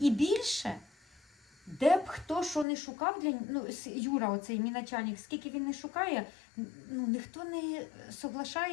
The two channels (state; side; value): drops out; right; at 2.7 s